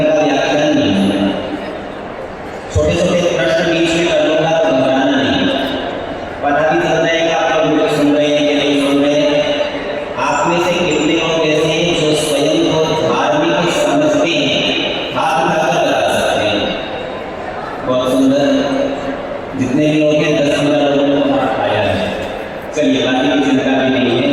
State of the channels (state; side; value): identical; both; correlation 1.00